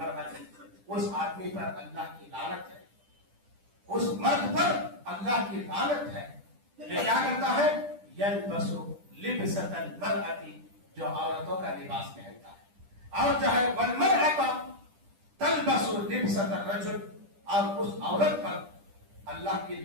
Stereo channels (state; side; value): late; left; 10 ms